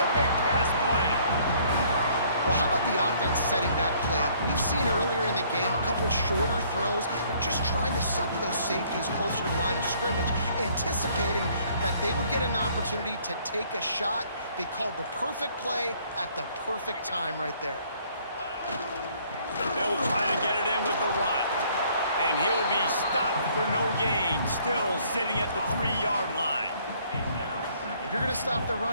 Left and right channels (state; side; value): inverted; both; correlation -0.62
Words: big pass play. Well, how about the offense setting that play up? We've seen earlier in the game a couple shorter throws. They're just trying to suck those safeties closer to the line of scrimmage, anticipating that they would get an opportunity to take a shot. They called the perfect play at the perfect time right there. They'll try to get it in with the run. And he'll be stopped for no gain, still sitting at the 3-yard line. If you're going to stop the